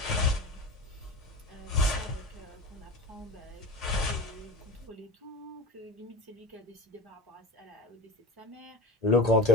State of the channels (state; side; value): normal; both; correlation 0.31